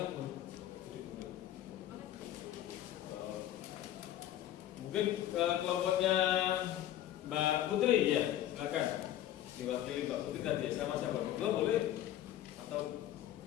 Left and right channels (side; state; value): right; quieter; 12.3 dB